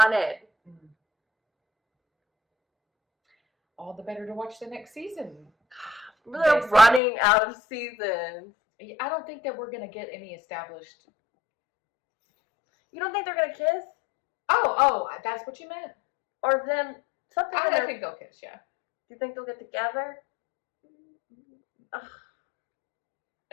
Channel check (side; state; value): right; drops out; at 7.0 s